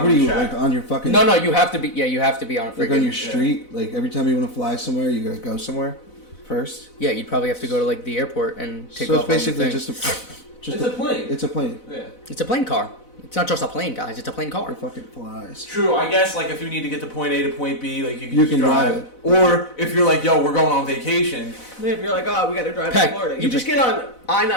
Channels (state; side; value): late; right; 4.0 ms